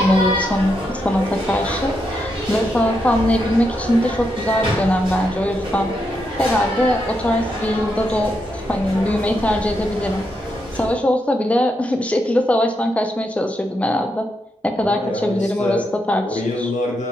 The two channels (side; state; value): both; normal; correlation 0.82